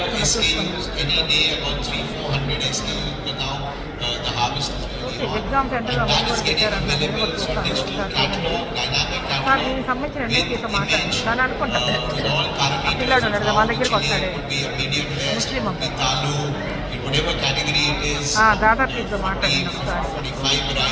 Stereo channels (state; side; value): identical; both; correlation 1.00